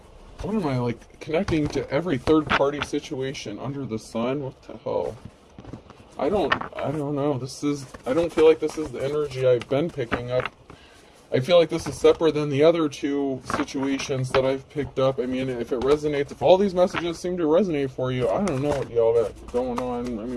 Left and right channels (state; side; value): identical; both; correlation 1.00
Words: What am I, like, connecting to every third-party situation under the sun? What the hell? I don't know. I don't feel like this is the energy I've been picking up. I feel like this is separate than the other two situations that I've picked up. I mean, if it resonates, if all these messages seem to resonate for you, I don't know what y'all got going on. I